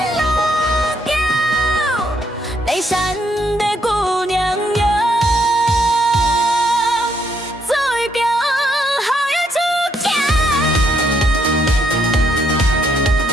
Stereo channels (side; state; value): both; normal; correlation 0.73